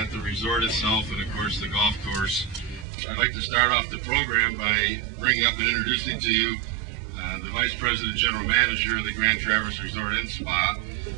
the resort itself and of course the golf course. I'd like to start off the program by bringing up and introducing to you the Vice President General Manager of the Grand Traverse Resort and Spa,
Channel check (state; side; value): drops out; left; at 2.9 s